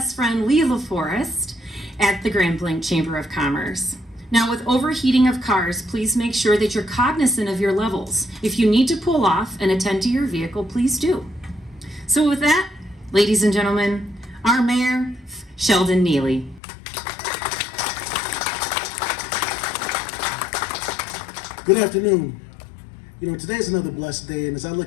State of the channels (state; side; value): drops out; right; at 16.6 s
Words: friend Lee LaForest at the Grand Blanc Chamber of Commerce. Now, with overheating of cars, please make sure that you're cognizant of your levels. If you need to pull off and attend to your vehicle, please do. So with that, ladies and gentlemen, our mayor, Sheldon Neely. Good afternoon. You know, today is another blessed day, and as I